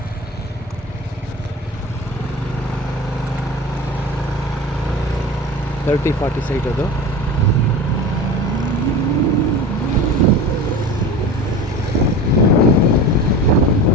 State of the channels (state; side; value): normal; both; correlation 0.32